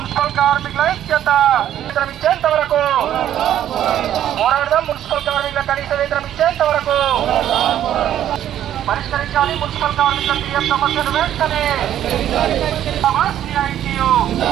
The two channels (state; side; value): quieter; left; 11.2 dB